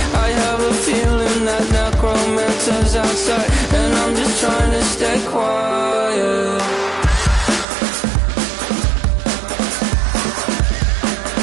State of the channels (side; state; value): left; drops out; at 7.7 s